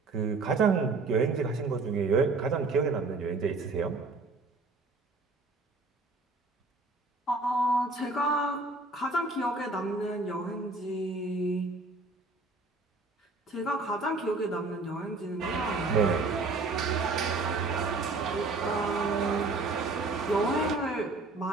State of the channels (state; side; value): quieter; left; 3.5 dB